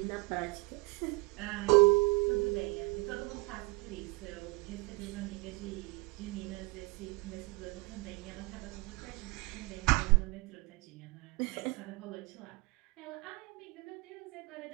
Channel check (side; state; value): left; quieter; 25.8 dB